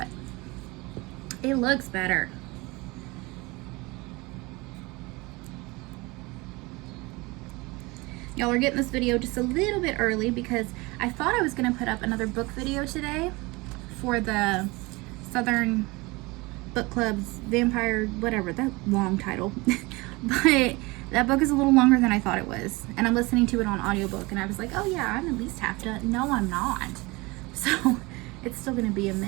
it looks better. Y'all are getting this video just a little bit early because I thought I was gonna put up another book video today for the Southern Book Club's Vampire, whatever, that long title. But that book is a little longer than I thought it was. And I'm listening to it on audiobook and I was like, oh yeah, I'm at least half done. No, I'm not. So it's still gonna be a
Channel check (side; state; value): left; quieter; 24.0 dB